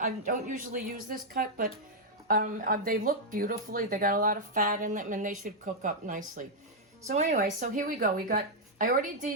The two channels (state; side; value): normal; both; correlation -0.03